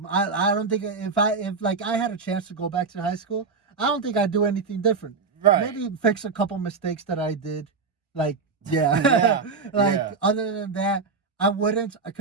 don't think if I had a chance to go back to high school, I don't think I'd do anything different. Right. Maybe fix a couple mistakes that I did. Like other than that, I wouldn't,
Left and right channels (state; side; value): quieter; left; 4.7 dB